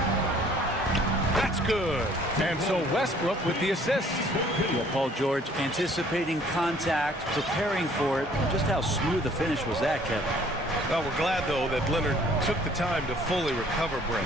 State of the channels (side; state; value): both; normal; correlation 0.57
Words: That's good. And so Westbrook with the assist. Yeah, Paul George anticipating contact, preparing for it. Just how smooth the finish was that, Kevin. Well, we're glad, though, that Leonard took the time to fully recover, Brent.